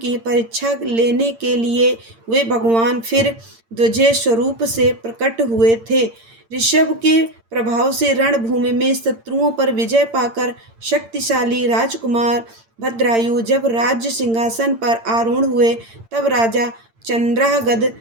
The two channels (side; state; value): left; late; 8.8 ms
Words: परीक्षा लेने के लिए वे भगवान फिर द्विज स्वरूप से प्रकट हुए थे। ऋषभ के प्रभाव से रणभूमि में शत्रुओं पर विजय पाकर शक्तिशाली राजकुमार भद्रायु जब राज्य सिंहासन पर आरूढ़ हुए, तब राजा चंद्रागद